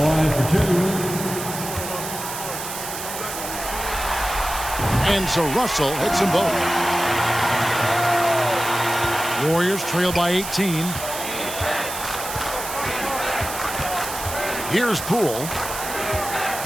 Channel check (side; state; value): right; noise; hiss, 7 dB below the sound